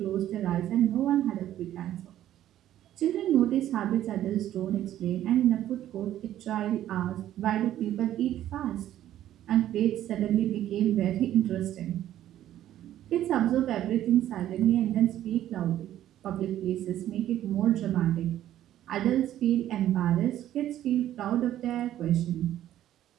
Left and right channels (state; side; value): quieter; left; 12.4 dB